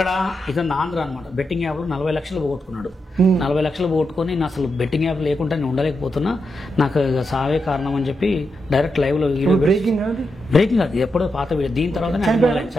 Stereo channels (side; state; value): both; normal; correlation 0.86